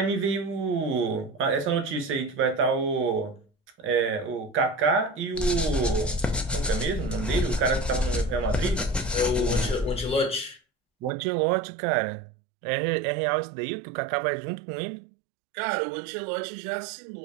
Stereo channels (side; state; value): left; drops out; at 11.1 s